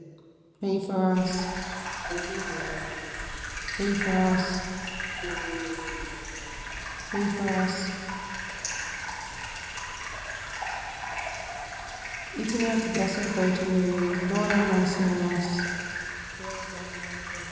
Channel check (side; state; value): both; identical; correlation 1.00